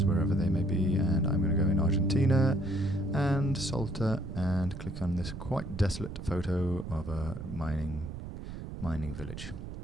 wherever they may be. And I'm going to go in Argentina and Salta and click on this quite desolate photo of a mining village.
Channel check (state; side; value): noise; right; rumble, 9 dB below the sound